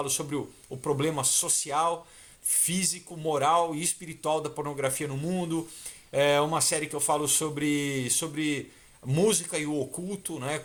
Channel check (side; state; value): both; identical; correlation 1.00